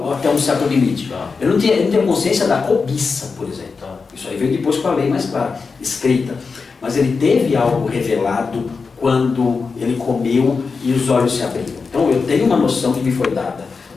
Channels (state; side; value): quieter; right; 4.8 dB